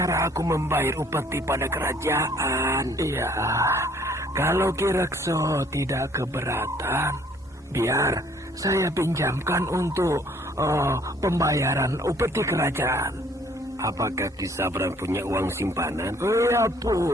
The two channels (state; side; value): normal; both; correlation 0.60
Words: aku membayar upeti pada kerajaan? Iya, kalau Ki Rekso tidak keberatan, biar saya pinjamkan untuk pembayaran upeti kerajaan. Apakah Ki Sabrang punya uang simpanan? Iya